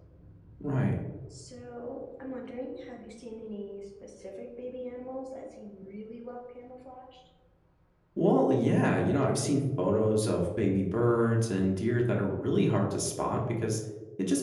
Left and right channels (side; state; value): both; identical; correlation 1.00